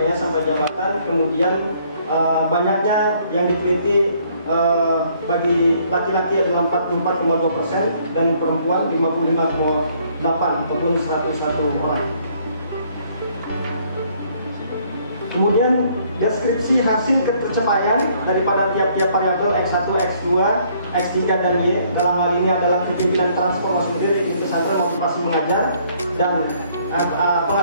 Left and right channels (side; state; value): both; inverted; correlation -0.64